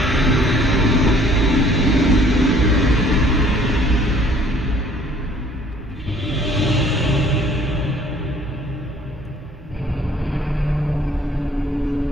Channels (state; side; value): normal; both; correlation 0.57